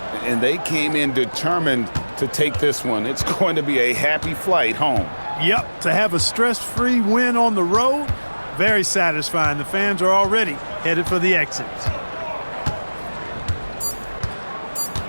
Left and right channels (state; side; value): inverted; both; correlation -1.00